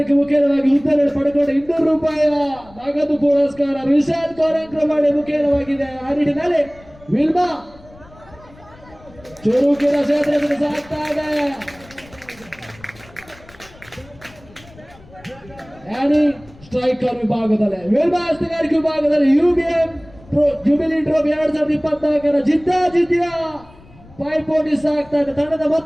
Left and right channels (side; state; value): left; noise; rumble, 24 dB below the sound